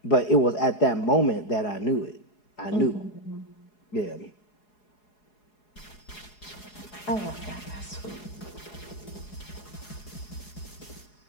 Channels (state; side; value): late; right; 4.8 ms